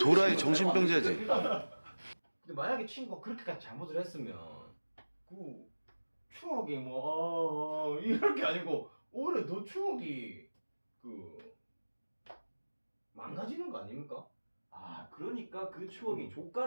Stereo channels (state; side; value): inverted; both; correlation -1.00